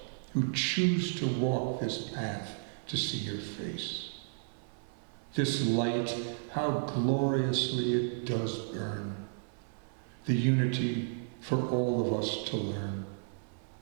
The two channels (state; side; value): silent; left; 56 dB below the other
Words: who choose to walk this path to see your face. This light, how gloriously it does burn, the unity for all of us to learn.